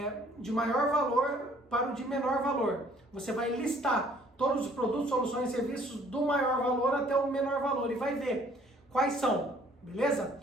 para o de menor valor. Você vai listar todos os produtos, soluções e serviços do maior valor até o menor valor e vai ver quais são, beleza?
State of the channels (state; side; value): normal; both; correlation 0.59